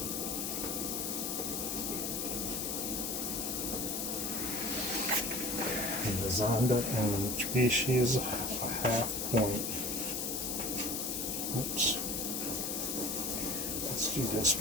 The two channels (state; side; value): noise; left; hiss, 1 dB below the sound